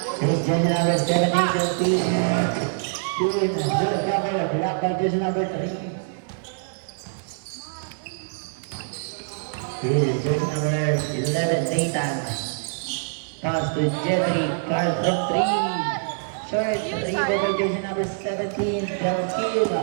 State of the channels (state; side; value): silent; left; digital silence